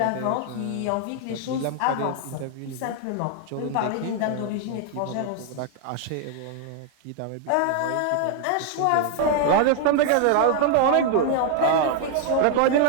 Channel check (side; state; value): both; different; correlation 0.00